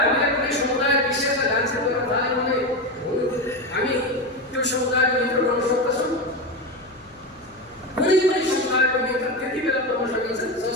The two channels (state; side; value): noise; left; hum, 28 dB below the sound